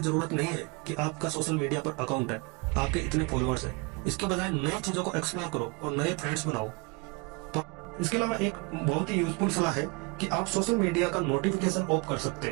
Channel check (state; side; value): quieter; left; 29.2 dB